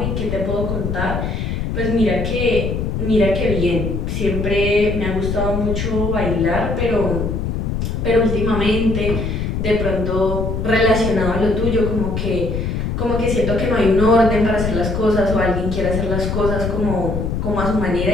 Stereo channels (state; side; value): noise; left; rumble, 2 dB below the sound